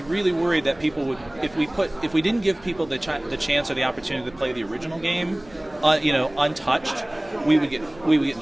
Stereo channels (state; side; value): noise; right; rumble, 25 dB below the sound